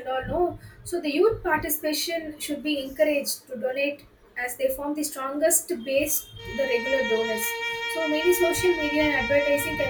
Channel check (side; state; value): both; identical; correlation 1.00